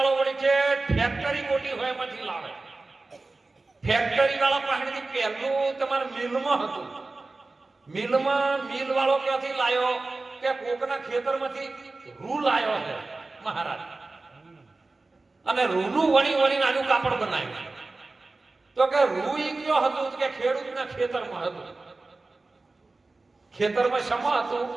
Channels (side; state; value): left; quieter; 3.4 dB